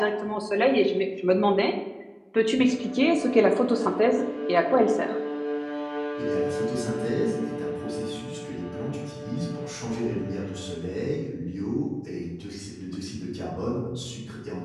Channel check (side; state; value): both; identical; correlation 1.00